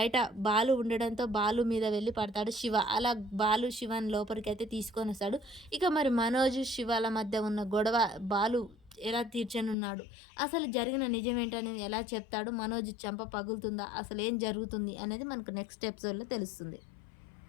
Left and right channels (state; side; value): drops out; right; at 9.8 s